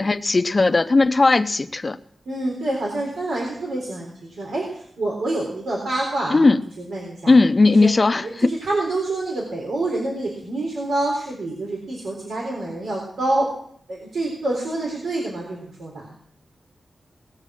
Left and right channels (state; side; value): normal; both; correlation 0.93